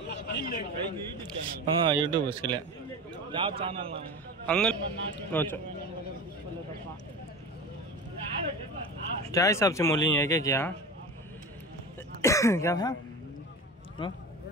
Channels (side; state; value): both; normal; correlation 0.30